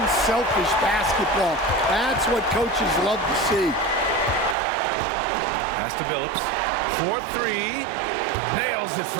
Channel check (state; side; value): drops out; left; at 4.5 s